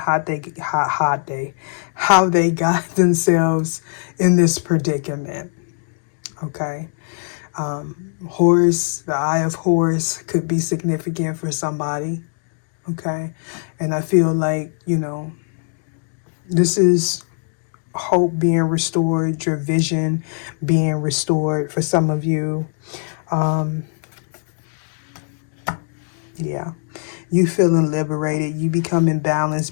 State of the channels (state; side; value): silent; right; digital silence